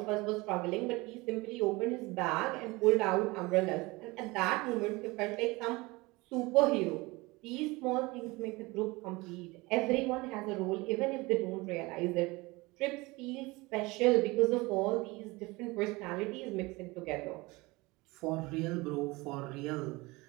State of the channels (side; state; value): left; quieter; 23.0 dB